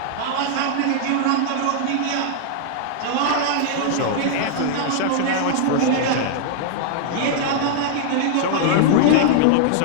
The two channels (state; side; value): different; both; correlation -0.01